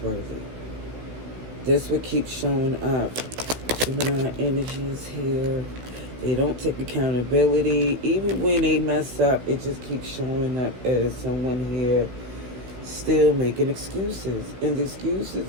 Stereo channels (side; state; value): left; late; 16 ms